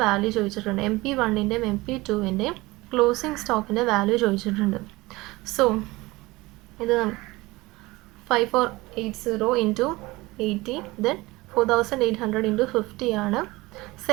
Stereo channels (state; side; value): quieter; left; 21.1 dB